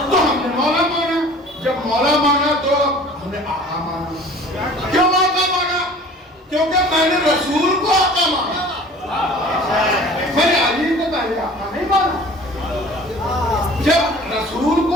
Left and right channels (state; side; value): normal; both; correlation 0.46